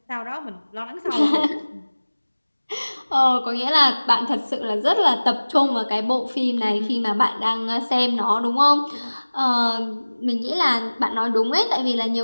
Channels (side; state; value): both; inverted; correlation -1.00